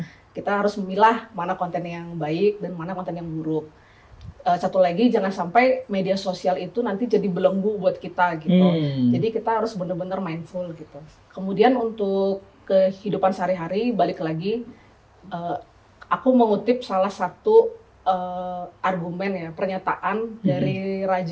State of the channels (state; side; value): identical; both; correlation 1.00